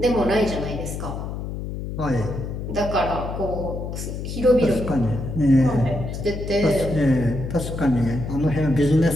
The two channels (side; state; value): left; noise; hum, 6 dB below the sound